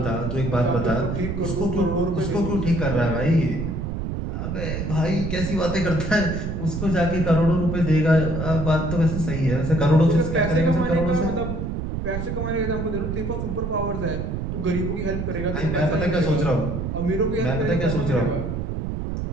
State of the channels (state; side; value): noise; right; rumble, 3 dB below the sound